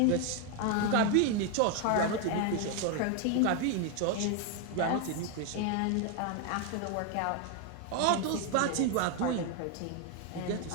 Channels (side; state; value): both; different; correlation 0.01